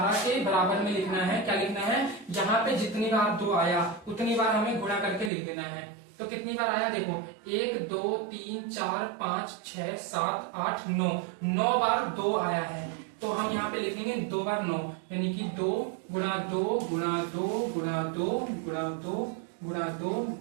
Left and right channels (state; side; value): drops out; left; at 5.3 s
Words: के बराबर में लिखना है। क्या लिखना है, यहाँ पे जितनी बार 2 आया उतनी बार हमें गुणा करके लिख देना है। तो कितनी बार आया देखो, 1 2 3 4 5 6 7 8 9, 9 बार 2 आया है। तो हम यहाँ पे लिखेंगे 2 बार 9, यानी कि 2 गुणा 2 गुणा 2 गुणा 2 गुणा 2 गुणा 2